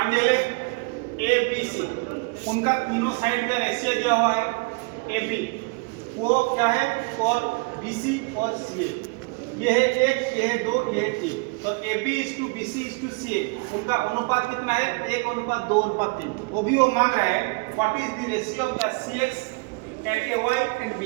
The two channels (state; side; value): quieter; left; 28.6 dB